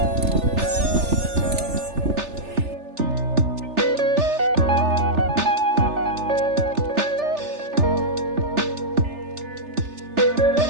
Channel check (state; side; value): late; left; 3.4 ms